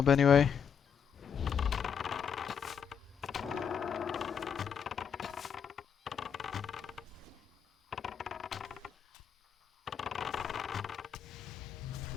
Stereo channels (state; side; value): quieter; right; 7.4 dB